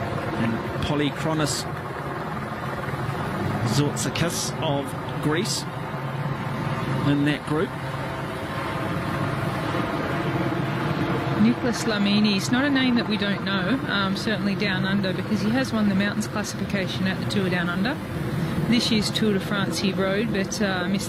and Polykronos Zourtzakis of Greece in that group. Nicholas Lamini, he's not a name that we don't know, certainly down under, because he has won the mountains classification at the Tour Down Under. This year's Tour de France he rode, but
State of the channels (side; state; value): both; identical; correlation 1.00